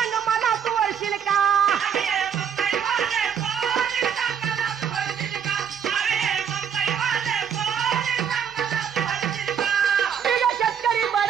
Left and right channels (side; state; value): left; quieter; 7.9 dB